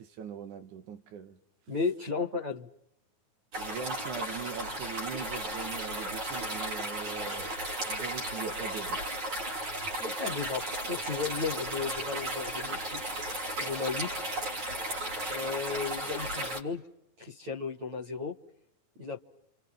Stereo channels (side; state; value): left; late; 9.3 ms